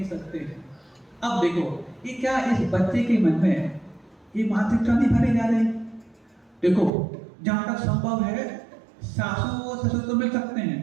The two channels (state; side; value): drops out; left; at 6.9 s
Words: सकते हैं। अब देखो, ये क्या इस बच्चे के मन में ये मानसिकता नहीं भरी जा रही? देखो, जहां तक संभव है सासू और ससुर तो मिल सकते